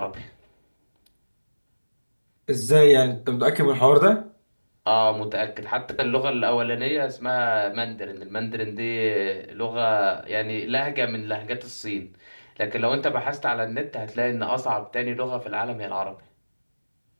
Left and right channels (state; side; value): inverted; both; correlation -1.00